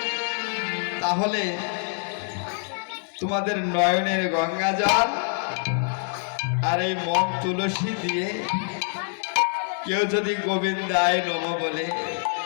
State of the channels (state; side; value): silent; right; 59 dB below the other